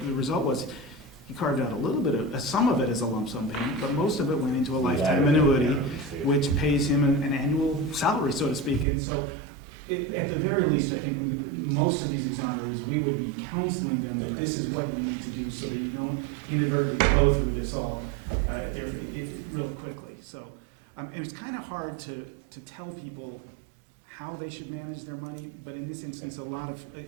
result was he carved out a little bit of some of it as a lump sum payment, but most of it went into a lifetime annuity, which pays him an annual salary, so to speak. And so, at the very least, I think most of these exonerees, we would be counseling them that this is what you need to do so that you don't inadvertently blow through this all real quickly. So, and it's kind of hard to tell people how they should manage their money, but in this instance, a lot of,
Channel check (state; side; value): drops out; left; at 8.8 s